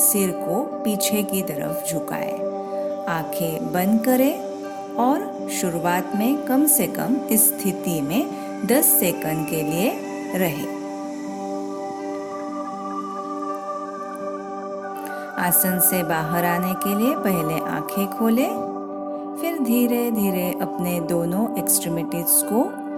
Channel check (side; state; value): both; identical; correlation 1.00